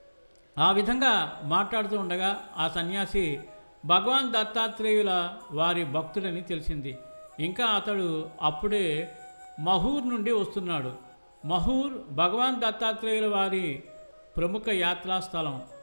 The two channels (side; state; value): both; inverted; correlation -1.00